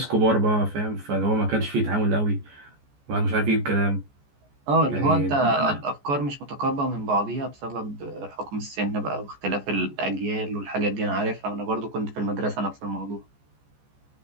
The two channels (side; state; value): left; late; 14 ms